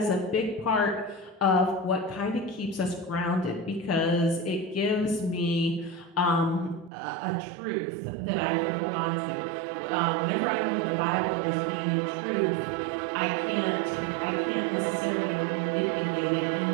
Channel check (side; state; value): left; drops out; at 6.9 s